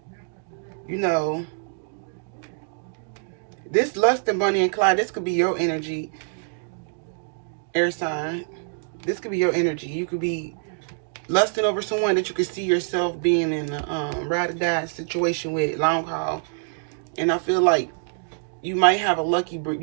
You know, this Lust and Bunny and Clyde, this could be your energy, air sign. This could be your energy. You could be lusting over someone that you could see yourself being in a ride or die situation with, long haul. And I feel like you might have a lucky brick.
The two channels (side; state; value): left; silent; digital silence